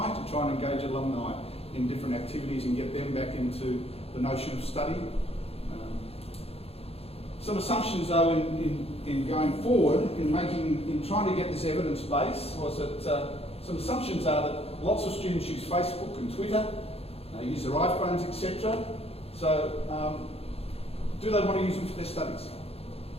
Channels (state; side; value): late; right; 0.29 ms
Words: to try and engage alumni in different activities and get them back into the notion of study. Some assumptions though in going forward, in trying to get this evidence base, was that some assumptions are that lots of students use Facebook and Twitter, use their iPhones, etc. So, do they want to use them for their studies?